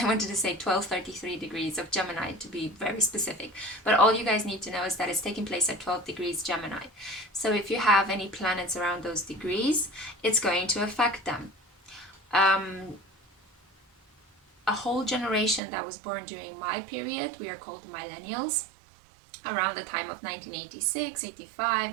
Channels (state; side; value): drops out; left; at 15.6 s